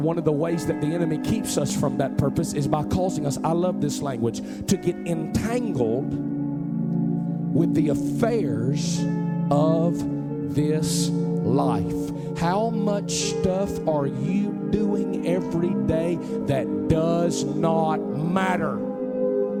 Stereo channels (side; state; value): both; identical; correlation 1.00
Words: of the ways that the enemy keeps us from that purpose is by causing us, I love this language, to get entangled with the affairs of this life. How much stuff are you doing every day that does not matter?